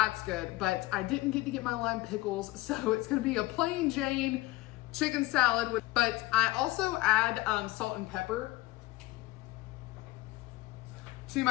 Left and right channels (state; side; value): quieter; right; 19.1 dB